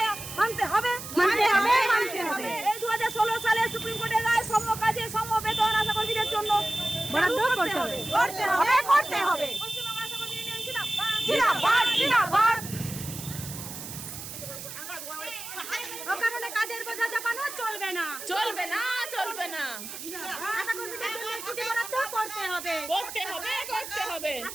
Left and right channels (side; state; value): right; noise; hiss, 10 dB below the sound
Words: মানতে হবে, মানতে হবে, মানতে হবে, এই 2016 সালে সুপ্রিম কোর্টের রায় সমকাজে সমবেতন আশা কর্মীদের জন্য বরাদ্দ করতে হবে, করতে হবে, করতে হবে। পশ্চিমবঙ্গ আশা কর্মী ইউনিয়ন জিন্দাবাদ, জিন্দাবাদ, জিন্দাবাদ। অকারণে কাজের বোঝা চাপানো চলবে না, চলবে না, চলবে না, আশা কর্মীদের জন্য ছুটি বরাদ্দ করতে হবে, করতে হবে, করতে হবে,